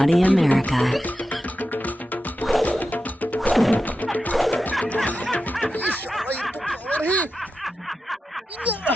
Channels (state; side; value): normal; both; correlation 0.91